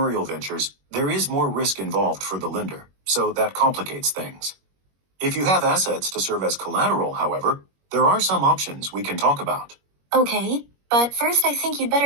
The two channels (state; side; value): late; left; 21 ms